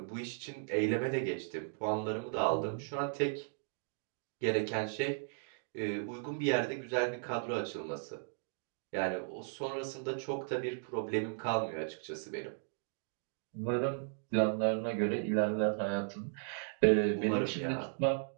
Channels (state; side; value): silent; left; digital silence